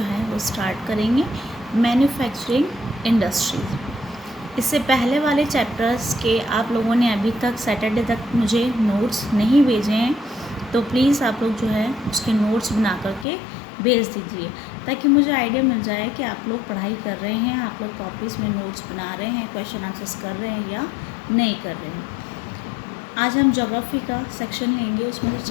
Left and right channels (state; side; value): drops out; right; at 13.2 s